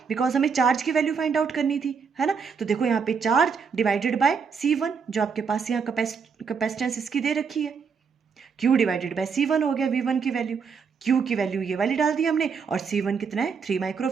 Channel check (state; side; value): quieter; left; 5.9 dB